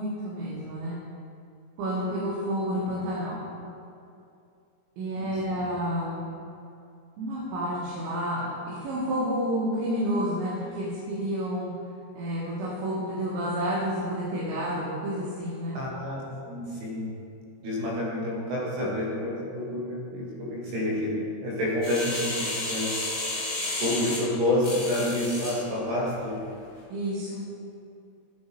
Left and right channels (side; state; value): left; late; 22 ms